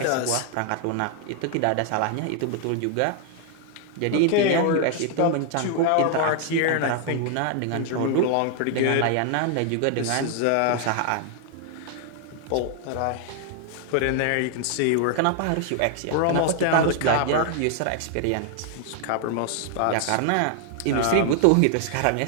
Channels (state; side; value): different; both; correlation 0.00